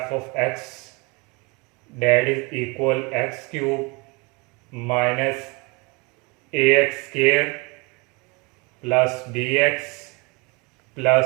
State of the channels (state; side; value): quieter; left; 27.7 dB